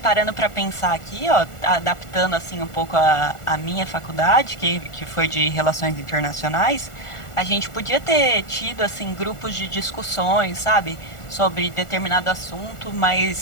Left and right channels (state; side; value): late; right; 1.4 ms